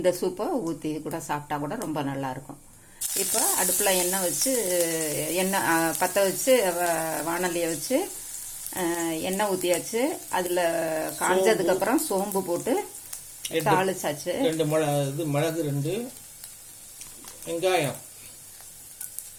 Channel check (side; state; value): both; identical; correlation 1.00